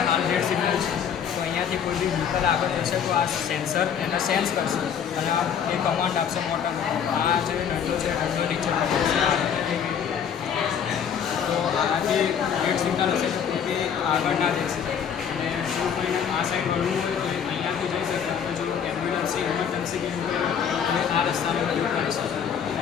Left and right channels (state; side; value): quieter; right; 7.8 dB